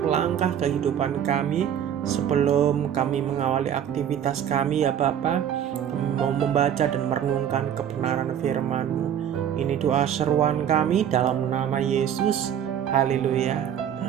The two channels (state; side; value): quieter; left; 9.4 dB